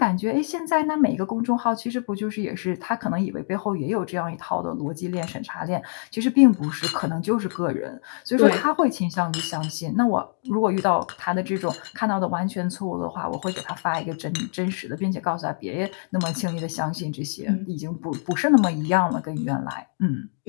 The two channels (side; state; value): right; silent; 56 dB below the other